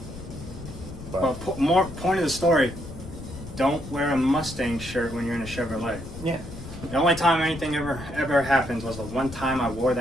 But more point of the story, don't wear a Mustang shirt when you're in a Chevrolet. Yeah. The only time anything ever happened was the one time I wore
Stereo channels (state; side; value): noise; left; rumble, 12 dB below the sound